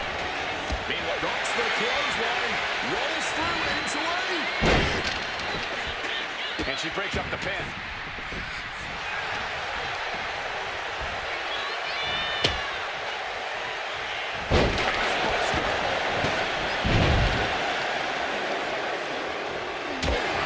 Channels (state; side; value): identical; both; correlation 1.00